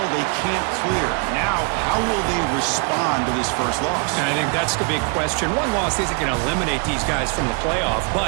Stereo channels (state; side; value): quieter; left; 34.8 dB